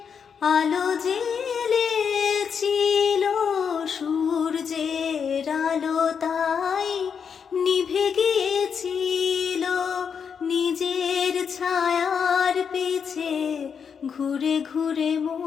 আলো জ্বেলেছিল, সূর্যের আলো তাই নিভে গিয়েছিল। নিজের ছায়ার পিছে ঘুরে ঘুরে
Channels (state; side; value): quieter; right; 6.8 dB